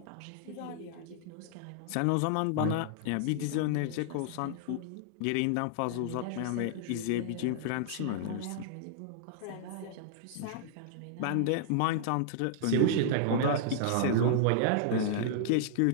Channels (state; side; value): different; both; correlation -0.01